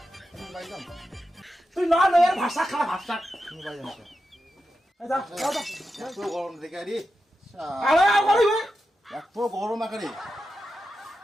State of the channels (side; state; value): both; normal; correlation 0.89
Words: তুমি পাইলাম তুই না এর ভাষা খা ভাষা তুমি পাইলাম এই যা যা এত গরম দেখে আরে আরে আর বলিবে এত গরম আকারে